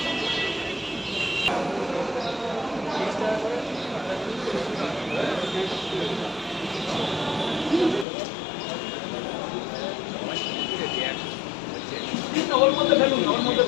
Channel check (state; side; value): drops out; right; at 8.1 s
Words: ওর মধ্যে ফেলুন, ওর মধ্যে